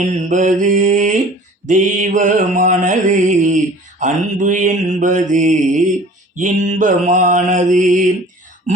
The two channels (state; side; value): normal; both; correlation 0.47